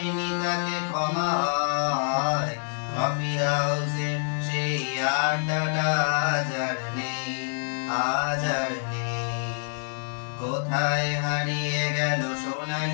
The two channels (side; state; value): right; silent; digital silence